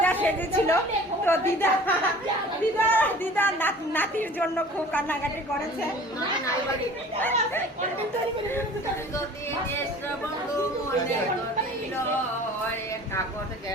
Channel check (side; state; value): both; normal; correlation 0.45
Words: সেজেছিল। তো দিদা নাতির জন্য খুব কান্নাকাটি করেছে।